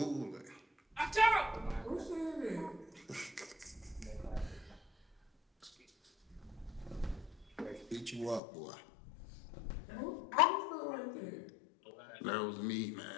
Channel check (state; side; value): drops out; right; at 8.4 s